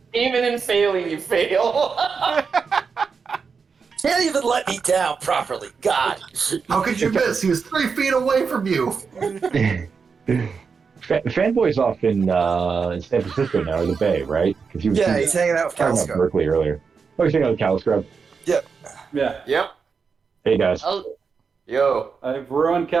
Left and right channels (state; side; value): quieter; left; 5.5 dB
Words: Even in failing, you fail. Can't even let me down properly. God. How could you miss? He was 3 feet away from you. Fanboy's off in San Francisco now, or the Bay, right? Because he was Yeah, he's hanging out with talking about Calsco. Berkeley earlier. Oh, he's hanging out with Caliscrub. Yeah. Yep. Hey, guys. Oh, Yo. I've ruined